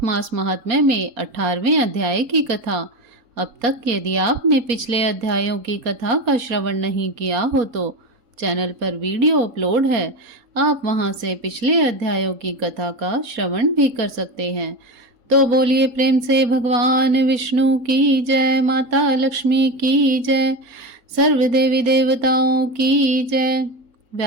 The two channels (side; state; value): left; late; 4.3 ms